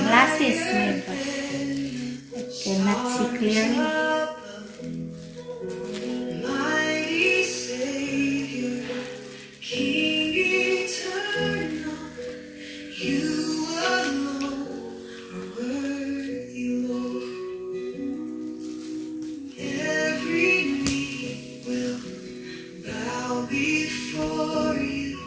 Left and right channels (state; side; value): identical; both; correlation 1.00